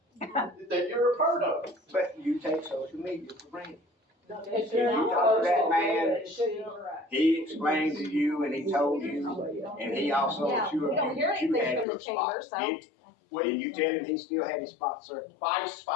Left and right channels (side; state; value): right; drops out; at 11.9 s